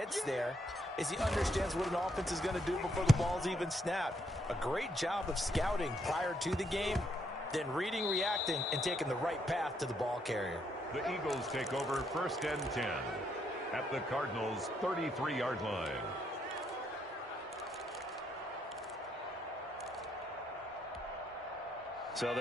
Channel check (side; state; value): both; normal; correlation 0.74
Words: there is he understands what an offense is going to do before the ball's even snapped. A great job of scouting prior to the game, then reading, reacting, and taking the right path to the ball carrier. The Eagles take over 1st and 10 at the Cardinals' 33-yard line. So